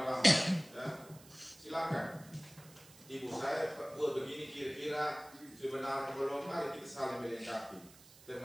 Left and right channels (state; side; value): noise; right; hiss, 22 dB below the sound